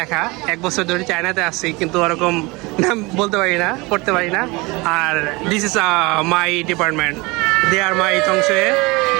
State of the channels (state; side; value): quieter; left; 24.4 dB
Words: 1 বছর ধরে চায়নাতে আসছি, কিন্তু ওরকম নাম বলতে পারি না, পড়তে পারি না। আর this is my department, they are my তংশে।